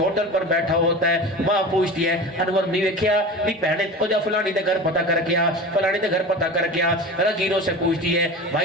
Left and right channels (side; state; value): both; normal; correlation 0.32